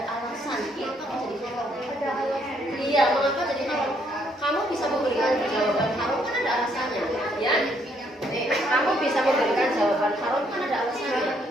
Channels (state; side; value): normal; both; correlation 0.70